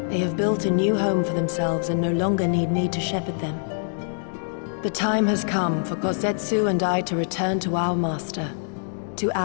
They have built a new home for themselves and no longer need me to shepherd them. The time has come for Kozetsu and I to return to our master, to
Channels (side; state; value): right; silent; digital silence